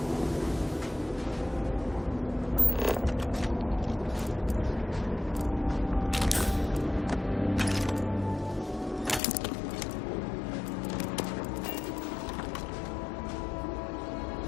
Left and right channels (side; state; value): right; drops out; at 9.2 s